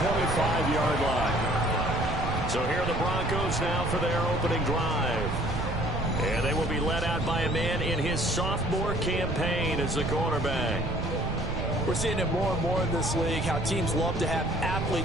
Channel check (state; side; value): noise; right; rumble, 4 dB below the sound